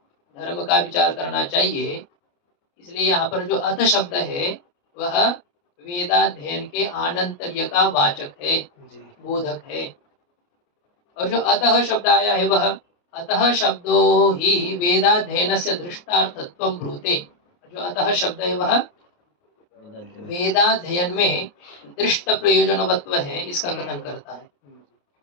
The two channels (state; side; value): late; right; 29 ms